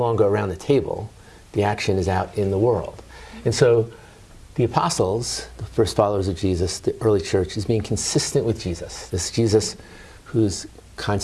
around the table. The action is out in the world. And so the apostles, the first followers of Jesus, the early church, is being consistent with Jesus. This Jesus who's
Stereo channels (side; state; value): both; identical; correlation 1.00